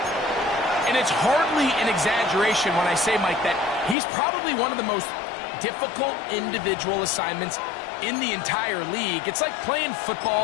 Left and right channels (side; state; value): right; drops out; at 4.0 s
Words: And it's hardly an exaggeration when I say, Mike, that he's probably one of the most difficult individual assignments in the entire league. It's like playing